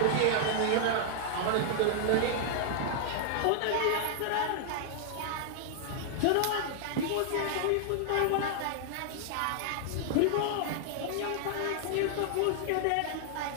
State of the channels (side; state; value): both; different; correlation -0.01